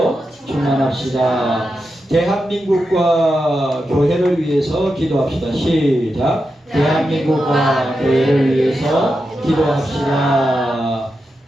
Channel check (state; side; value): normal; both; correlation 0.88